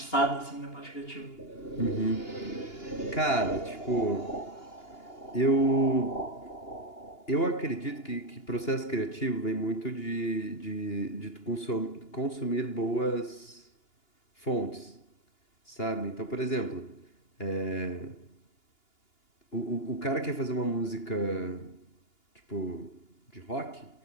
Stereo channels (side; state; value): right; late; 2.8 ms